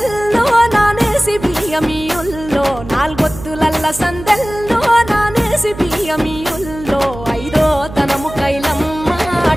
నానేసి బియ్యమియుల్లో, నాలుగొత్తులల్ల సందెల్లో నానేసి బియ్యమియుల్లో, ఐదో తనము కైలమ్మ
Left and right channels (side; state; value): right; noise; hum, 13 dB below the sound